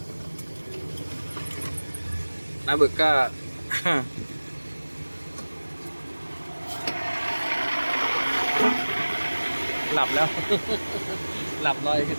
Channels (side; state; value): both; inverted; correlation -1.00